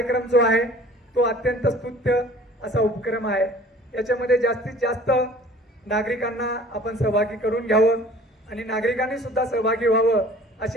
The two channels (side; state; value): both; normal; correlation 0.49